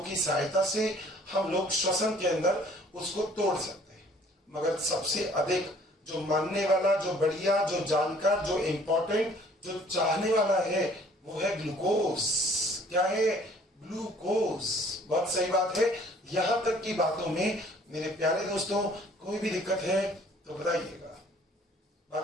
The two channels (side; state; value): both; normal; correlation 0.56